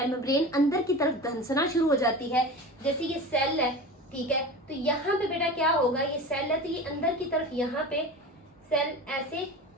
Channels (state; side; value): normal; both; correlation 0.31